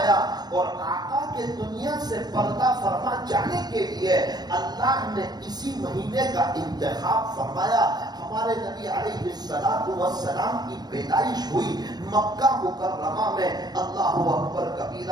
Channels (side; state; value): left; late; 0.19 ms